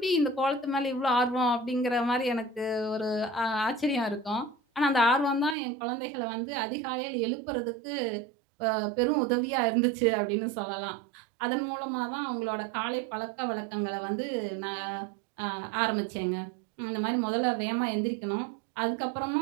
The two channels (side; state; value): left; drops out; at 5.6 s